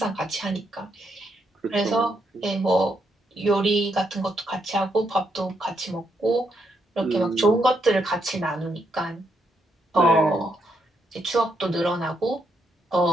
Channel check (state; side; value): normal; both; correlation 0.78